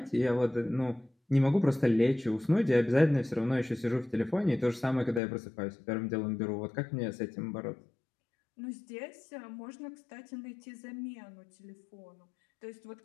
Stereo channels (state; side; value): drops out; right; at 5.2 s